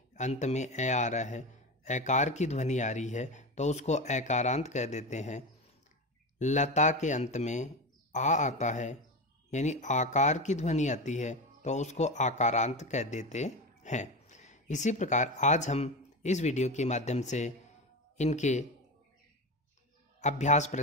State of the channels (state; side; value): normal; both; correlation 0.22